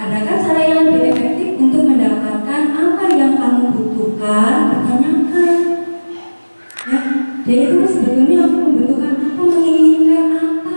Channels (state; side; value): inverted; both; correlation -1.00